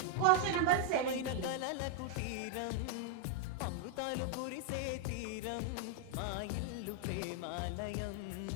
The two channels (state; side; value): different; both; correlation -0.01